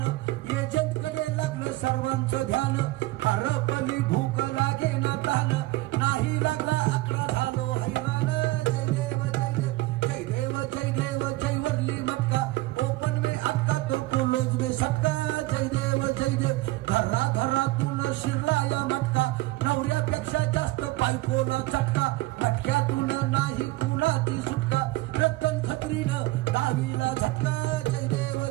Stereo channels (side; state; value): left; quieter; 19.3 dB